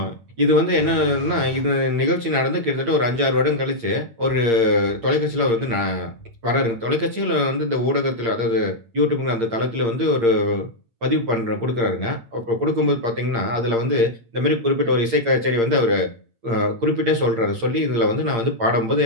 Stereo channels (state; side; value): late; left; 8.7 ms